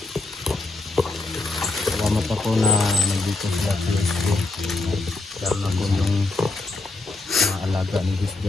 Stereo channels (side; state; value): right; quieter; 3.1 dB